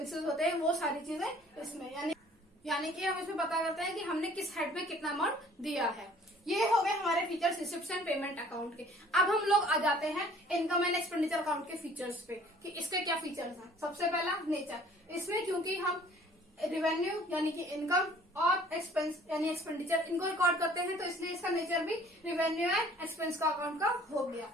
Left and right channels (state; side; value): normal; both; correlation 0.54